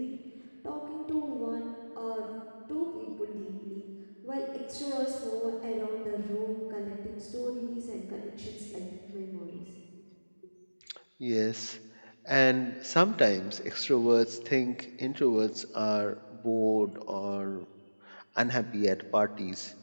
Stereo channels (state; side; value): inverted; both; correlation -1.00